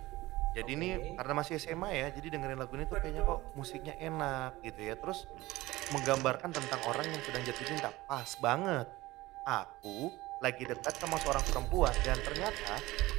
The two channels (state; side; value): quieter; left; 18.8 dB